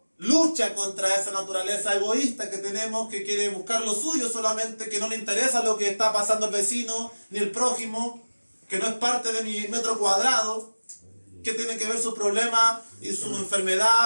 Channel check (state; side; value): inverted; both; correlation -1.00